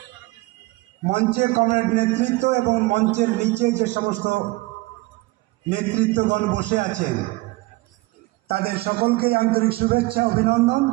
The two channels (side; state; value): left; quieter; 21.8 dB